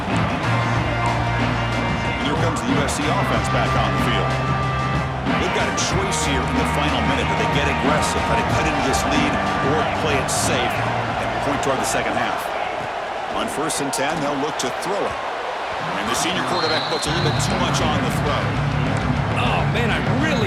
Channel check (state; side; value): identical; both; correlation 1.00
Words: And here comes the USC offense back on the field. They've got a choice here in the final minute. Do they get aggressive, try to cut into this lead, or play it safe and point toward the second half? On 1st and 10, they'll look to throw it. And the senior quarterback puts a little bit too much on the throw. Oh, man, I